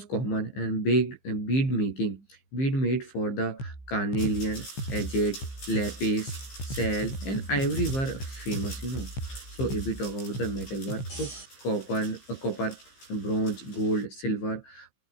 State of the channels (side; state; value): right; late; 15 ms